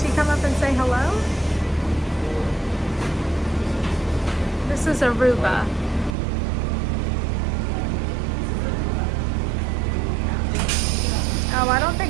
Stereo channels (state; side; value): drops out; left; at 6.2 s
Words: come up and say hello? This is Aruba. Oh, I don't